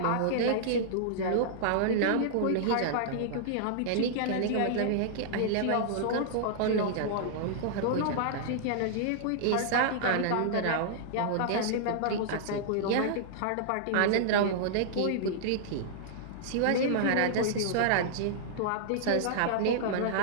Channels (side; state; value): both; different; correlation -0.02